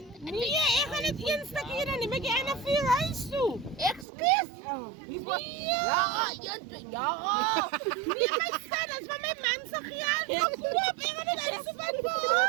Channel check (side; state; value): left; drops out; at 4.0 s